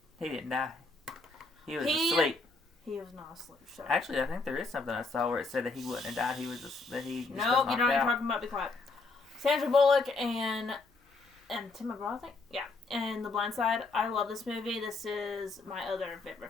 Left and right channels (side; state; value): right; quieter; 3.6 dB